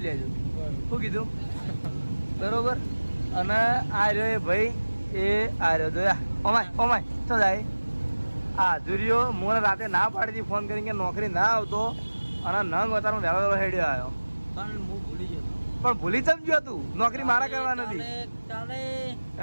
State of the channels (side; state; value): both; inverted; correlation -1.00